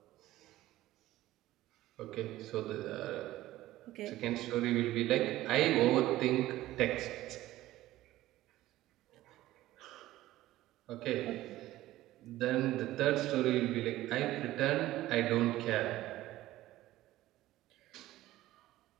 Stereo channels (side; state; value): left; quieter; 15.7 dB